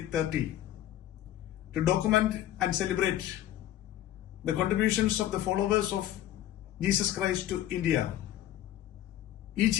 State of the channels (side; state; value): right; quieter; 12.7 dB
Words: to document and celebrate the contributions of the followers of Jesus Christ to India, each